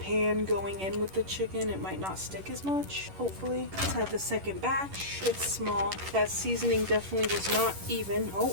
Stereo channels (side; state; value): left; late; 11 ms